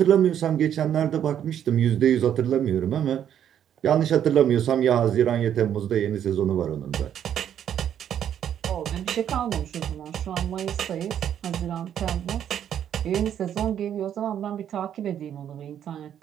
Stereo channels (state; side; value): quieter; left; 9.7 dB